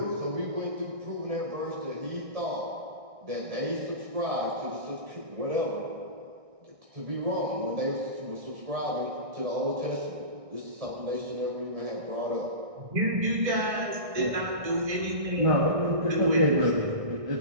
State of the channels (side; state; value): left; late; 1.6 ms